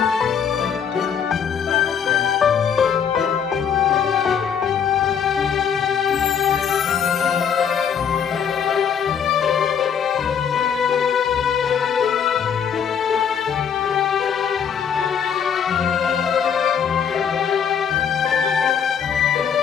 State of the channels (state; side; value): quieter; right; 7.5 dB